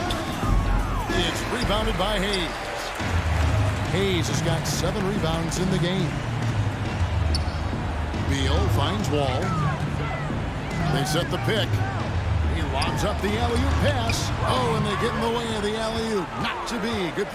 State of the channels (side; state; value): both; identical; correlation 1.00